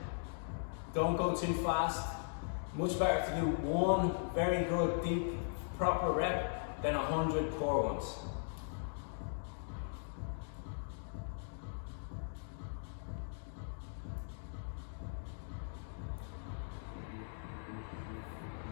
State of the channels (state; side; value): silent; right; digital silence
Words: Don't go too fast. Much better to do 1 very good, deep, proper rep than 100 poor ones.